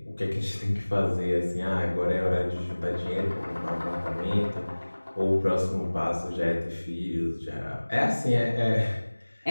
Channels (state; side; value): inverted; both; correlation -1.00